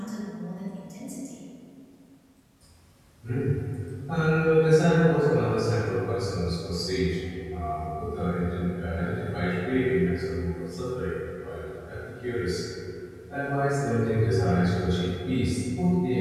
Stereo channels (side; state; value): both; identical; correlation 1.00